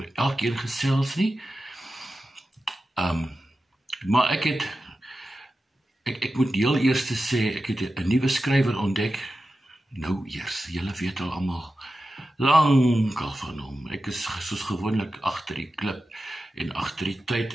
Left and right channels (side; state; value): both; normal; correlation 0.92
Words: elkeen gesels nie. Maar ek moet heel eers sê, ek het 'n nuwe skrywer ontdek. Nou eers, julle weet al almal lankal van hom. Ek is soos gewoonlik agter die klip en agter die